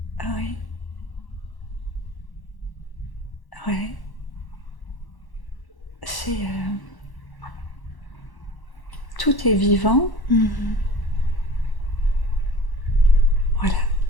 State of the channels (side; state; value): right; late; 1.1 ms